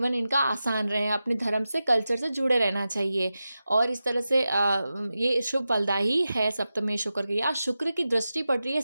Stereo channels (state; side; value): inverted; both; correlation -0.92